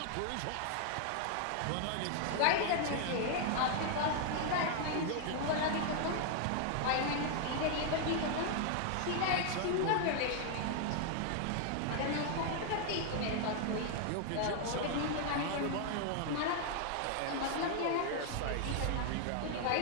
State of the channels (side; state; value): both; different; correlation 0.00